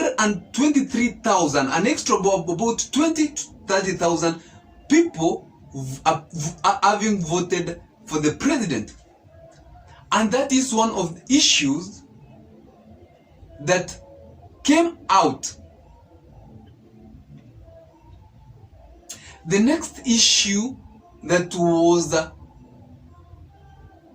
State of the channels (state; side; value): identical; both; correlation 1.00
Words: an extra about 20 to 30,000 people are having voted for the president. And that is one of the issues that came out. The next issue that was